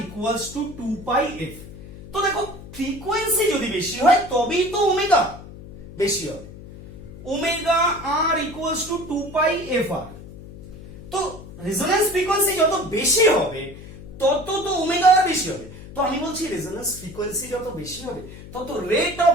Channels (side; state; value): left; noise; hum, 15 dB below the sound